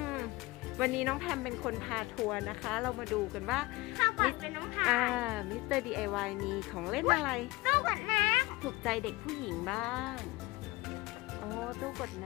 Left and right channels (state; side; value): quieter; right; 21.5 dB